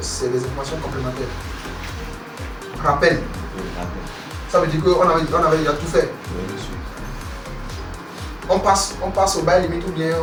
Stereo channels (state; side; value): identical; both; correlation 1.00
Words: des informations complémentaires? Rappel. Ça veut dire qu'on avait déjà tout fait. On passe au bail limite ou bien